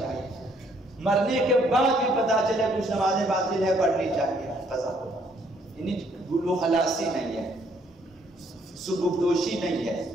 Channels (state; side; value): normal; both; correlation 0.67